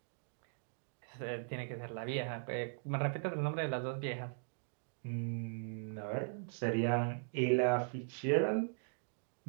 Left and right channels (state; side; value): silent; left; digital silence